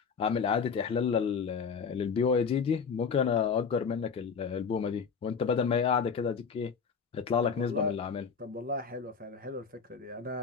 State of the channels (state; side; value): quieter; right; 5.9 dB